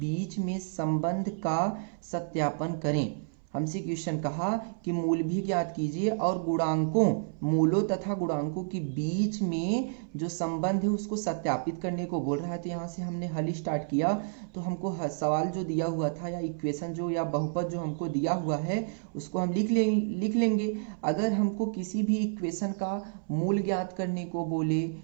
में संबंध का सत्यापन करें। हमसे क्वेश्चन कहा कि मूल भी ज्ञात कीजिए और गुणांकों, मूलों तथा गुणांकों के बीच में जो संबंध है उसको सत्यापित करने को बोल रहा है। तो यहाँ से हमने हल स्टार्ट किया, तो हमको सवाल जो दिया हुआ था या इक्वेशन जो या बहुपद जो हमको दिया हुआ है उसको हम लिख लेंगे। अगर हमको किसी भी इक्वेशन का मूल ज्ञात करने को बोले,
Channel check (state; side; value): silent; left; 58 dB below the other